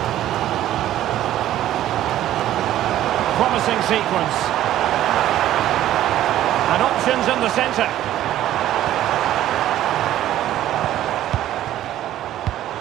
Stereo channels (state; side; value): quieter; left; 12.9 dB